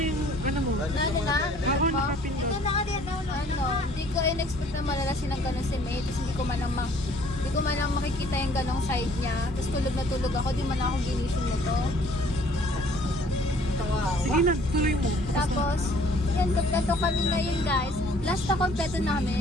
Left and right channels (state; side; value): normal; both; correlation 0.57